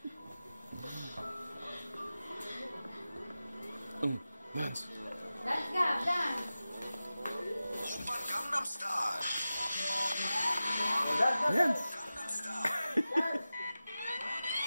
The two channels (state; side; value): inverted; both; correlation -0.95